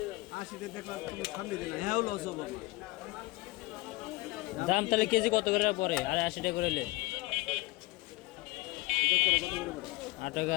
দাম তাহলে কেজি কত করে পরে? আর 80 টাকা করে নিলে 8 টাকা,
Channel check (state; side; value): quieter; right; 21.3 dB